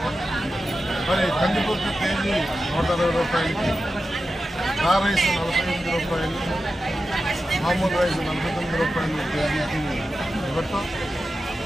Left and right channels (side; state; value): both; normal; correlation 0.92